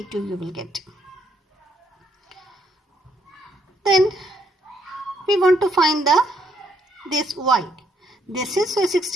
you will get. Then we want to find this y. This is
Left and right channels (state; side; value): normal; both; correlation 0.72